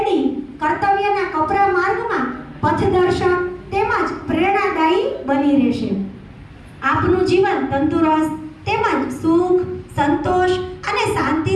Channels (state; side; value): identical; both; correlation 1.00